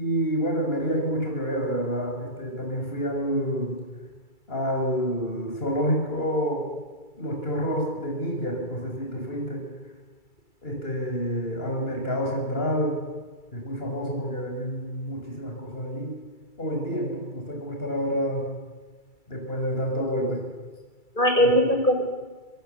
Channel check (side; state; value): right; late; 2.3 ms